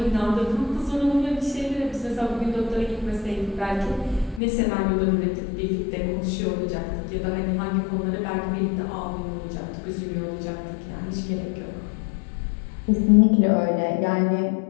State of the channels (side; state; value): right; drops out; at 4.4 s